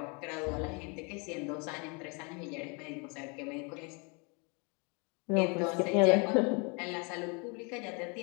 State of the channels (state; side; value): quieter; right; 32.8 dB